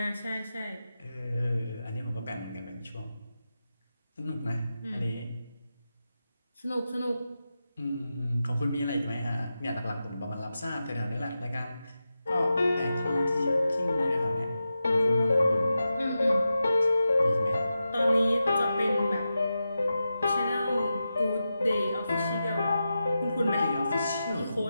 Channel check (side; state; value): both; inverted; correlation -0.91